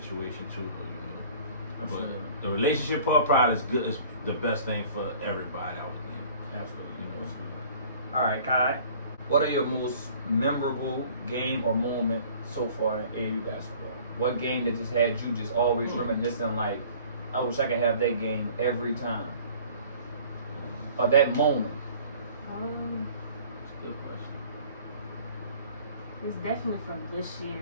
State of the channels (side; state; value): both; inverted; correlation -0.50